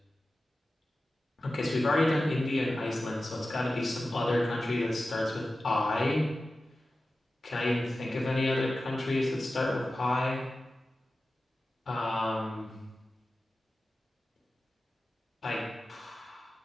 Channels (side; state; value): both; normal; correlation 0.94